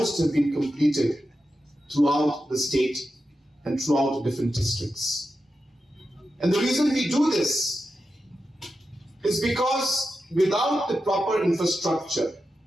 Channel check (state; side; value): normal; both; correlation 0.90